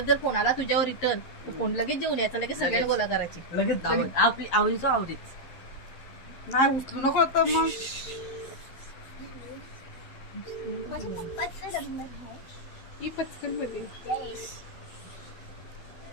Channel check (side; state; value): right; late; 11 ms